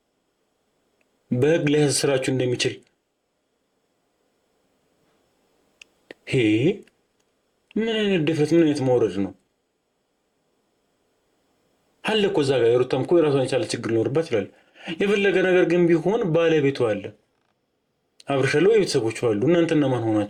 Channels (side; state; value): both; identical; correlation 1.00